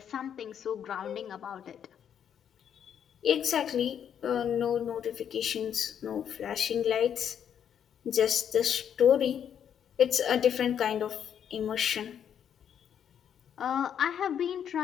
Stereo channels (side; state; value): right; quieter; 8.8 dB